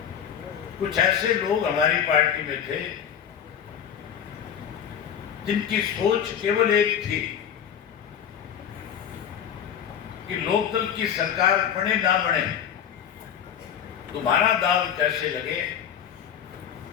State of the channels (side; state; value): right; quieter; 8.7 dB